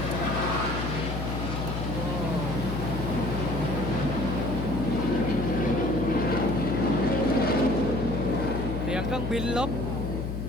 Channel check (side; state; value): left; noise; hum, 4 dB below the sound